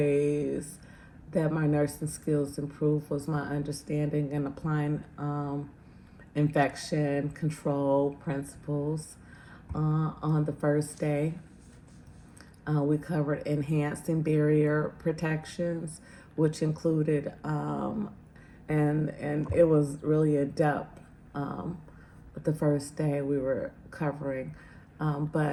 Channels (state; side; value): identical; both; correlation 1.00